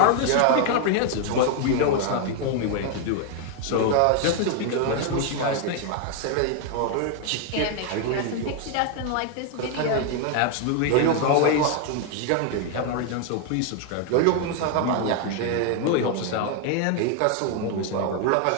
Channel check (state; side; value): different; both; correlation 0.00